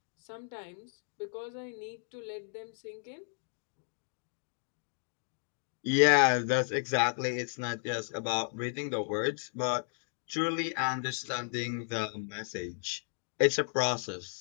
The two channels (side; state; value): right; silent; 55 dB below the other